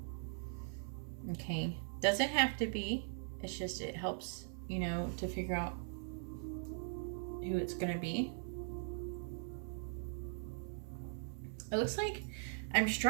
Okay. Doesn't have to be. It's just, it helps, you know, to figure out who it's going to be. It looks like I'm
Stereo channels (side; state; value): left; silent; 51 dB below the other